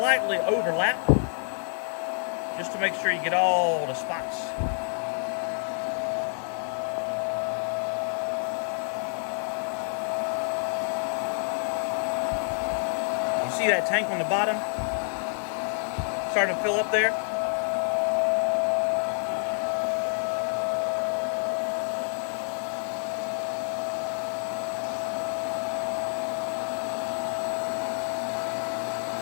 overlap just to make sure you get all the spots. You see that tank on the bottom starting to fill up there?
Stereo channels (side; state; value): right; silent; 57 dB below the other